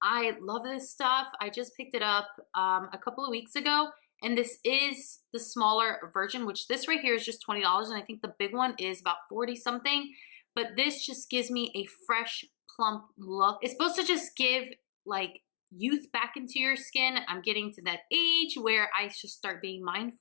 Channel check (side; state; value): right; silent; digital silence